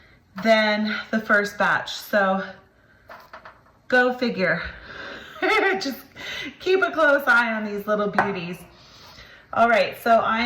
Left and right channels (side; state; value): both; identical; correlation 1.00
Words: than the first batch. So go figure. Just keep a close eye on these little beauties. All right, so I